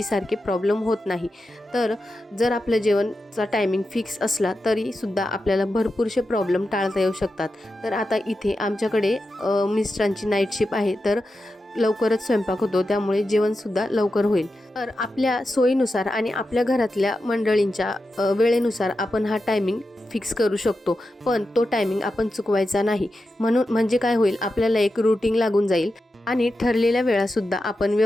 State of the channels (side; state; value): both; normal; correlation 0.90